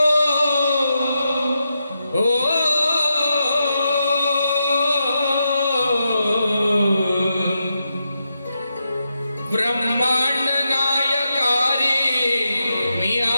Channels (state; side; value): inverted; both; correlation -0.86